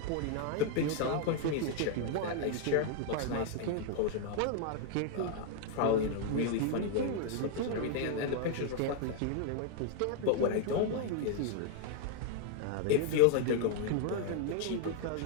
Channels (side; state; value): both; different; correlation 0.00